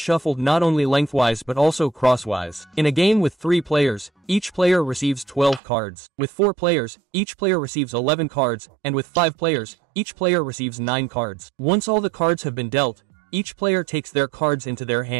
not only lengthwise but also crosswise. In a game with 3 players, each player receives 12 cards. With 4 players, each player receives 11 cards, and with 5 players, each player receives 9 cards. Once all the cards have been dealt, each player takes their cards into their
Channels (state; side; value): drops out; left; at 5.6 s